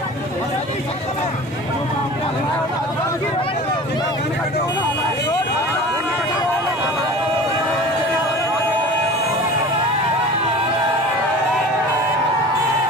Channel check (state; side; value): normal; both; correlation 0.39